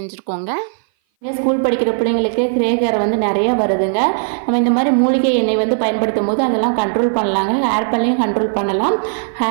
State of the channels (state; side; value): silent; left; 58 dB below the other